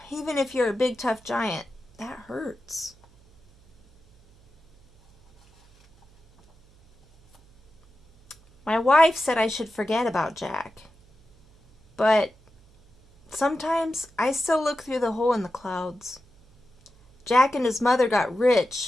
Even if you're a big, tough giant, that hurts. My wife said I should forget about Jack. But sometimes I still look through the hole in the clouds. Jack and his mother got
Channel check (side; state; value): right; noise; hum, 29 dB below the sound